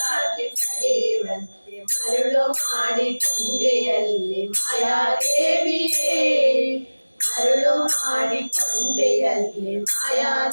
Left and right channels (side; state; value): both; inverted; correlation -1.00